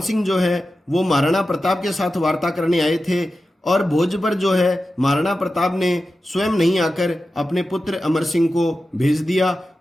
सिंह जो है वो महाराणा प्रताप के साथ वार्ता करने आए थे और भोज पर जो है महाराणा प्रताप ने स्वयं नहीं आकर अपने पुत्र अमर सिंह को भेज दिया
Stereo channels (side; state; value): both; normal; correlation 0.93